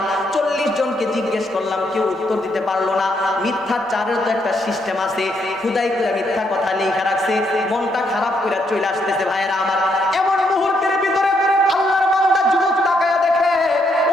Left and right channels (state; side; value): normal; both; correlation 0.75